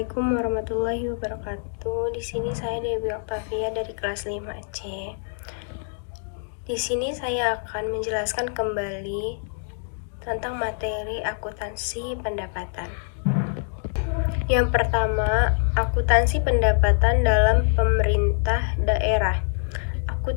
warahmatullahi wabarakatuh. Di sini saya Dewi Oktavia dari kelas 5C. Di sini saya akan menjelaskan kembali tentang materi akuntansi pendapatan. Yang pertama, akuntansi pendapatan dalam pemerintah daerah.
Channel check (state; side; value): silent; right; digital silence